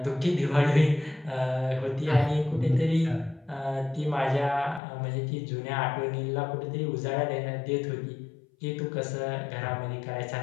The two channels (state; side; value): drops out; right; at 4.8 s